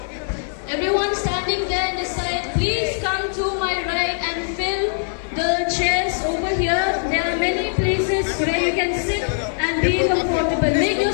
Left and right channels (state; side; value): silent; right; digital silence